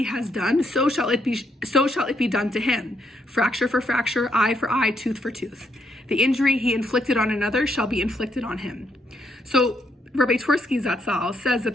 has done, so shall it be done to him. Fracture for fracture, eye for eye, tooth for tooth. The injury he inflicted on another shall be inflicted on him. So Rabbi Twersky Zatzal says that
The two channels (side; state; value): both; normal; correlation 0.75